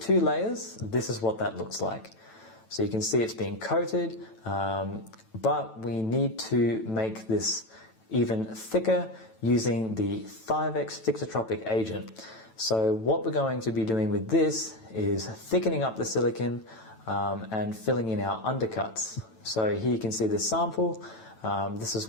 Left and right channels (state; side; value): late; right; 9.1 ms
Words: layers, this is what that looks like. So you can see it's being coated, but we need to make this even thicker using the Thivex thixotropic agent. So what we're going to be doing with this is thickening up the silicone and filling in our undercuts. So here you can see this sample. This is